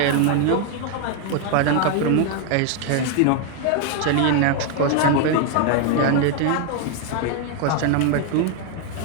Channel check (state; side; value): different; both; correlation 0.00